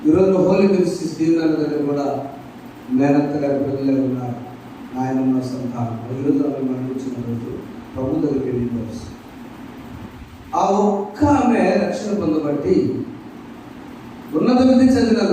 ఈరోజు హోలీ మినిస్ట్రీస్ దీవెనల దగ్గర కూడా మేనత్త గారి పిల్లలే ఉన్నారు. నాయనమ్మ సంతానం ఈరోజు ఆమె మరణించిన రోజు ప్రభు దగ్గరికి వెళ్ళి ఆ ఒక్క ఆమె రక్షణ పొందబట్టి ఉన్నత విధి చదివిన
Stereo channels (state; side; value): identical; both; correlation 1.00